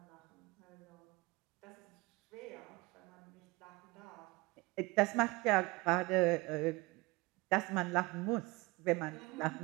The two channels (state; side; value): quieter; left; 24.0 dB